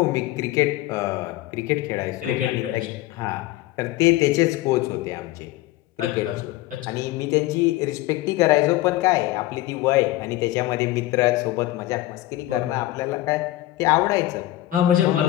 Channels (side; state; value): right; quieter; 16.1 dB